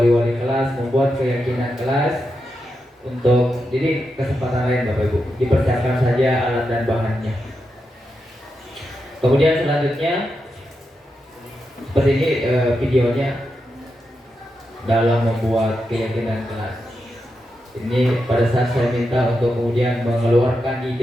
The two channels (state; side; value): normal; both; correlation 0.87